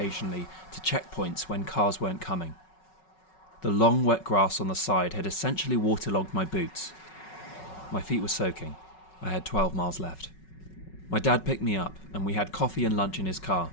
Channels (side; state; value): right; late; 5.4 ms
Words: to checkpoints when cars weren't coming. The long wet grass on the side had essentially waterlogged my boots. My feet were soaking. I had 12 miles left. My dad picked me up and we had coffee and lunch in his car,